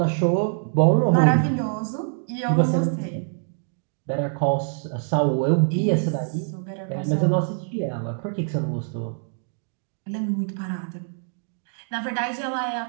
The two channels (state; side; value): silent; left; digital silence